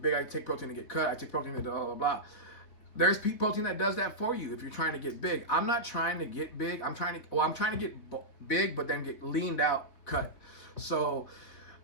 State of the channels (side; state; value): right; late; 4.0 ms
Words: big. I take protein to get cut. I take protein to blah blah blah." There's protein that does that for you if you're trying to get big. I'm not trying to get big. I'm trying to get big, but then get leaned out, cut. So,